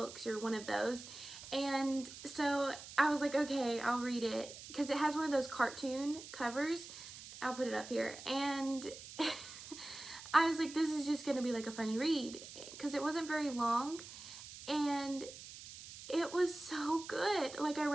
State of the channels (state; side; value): noise; right; hiss, 14 dB below the sound